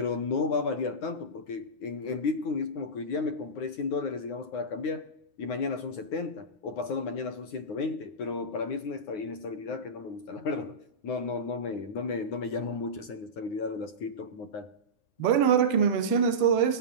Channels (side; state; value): right; late; 9.6 ms